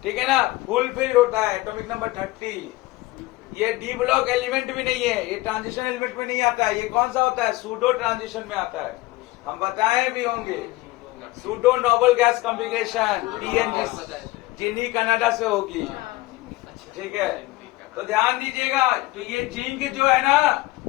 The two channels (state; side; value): quieter; right; 19.5 dB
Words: ठीक है ना, फुलफिल होता है एटॉमिक नंबर 30। ये डी ब्लॉक एलिमेंट भी नहीं है, ये ट्रांजिशन एलिमेंट में नहीं आता है। ये कौन सा होता है, सूडो ट्रांजिशन में आता है, हम बताए भी होंगे। Pseudo noble gas configuration TNG, जिन्हीं कनाडा से होगी, ठीक है। तो ध्यान दीजिएगा, तो ये जिंक जो है ना,